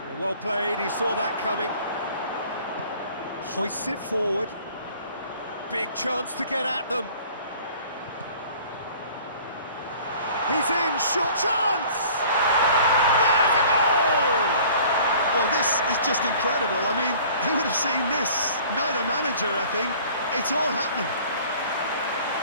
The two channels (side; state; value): both; inverted; correlation -0.49